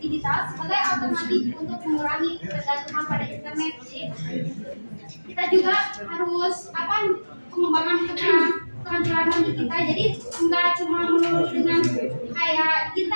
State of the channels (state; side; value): inverted; both; correlation -1.00